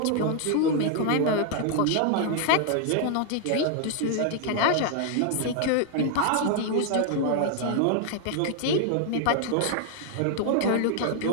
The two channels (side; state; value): both; different; correlation 0.00